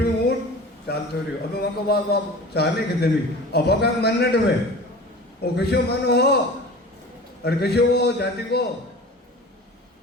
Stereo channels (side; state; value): both; normal; correlation 0.38